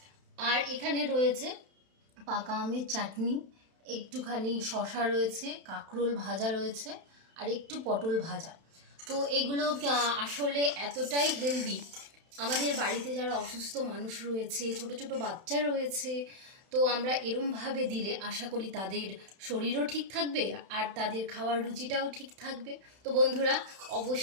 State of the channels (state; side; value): late; left; 31 ms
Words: আর এখানে রয়েছে পাকা আমের চাটনি, একটুখানি শসা রয়েছে, কাঁকরোল ভাজা রয়েছে, আর একটু পটল ভাজা। তো এগুলো আসলে এতটাই হেলদি। আমাদের বাড়িতে যারা অসুস্থ মানুষ রয়েছে, ছোট ছোট বাচ্চা রয়েছে, তো আমরা এরমভাবে দিলে আশা করি তাদের শরীরও ঠিক থাকবে আর তাদের খাওয়ার রুচিটাও ঠিক থাকবে। তো বন্ধুরা